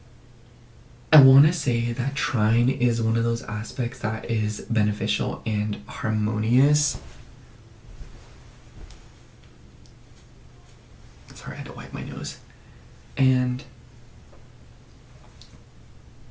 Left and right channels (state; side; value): identical; both; correlation 1.00